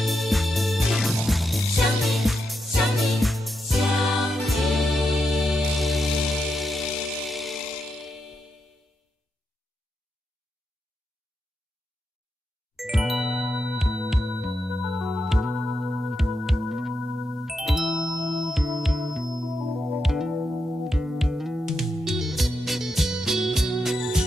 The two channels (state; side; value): normal; both; correlation 0.85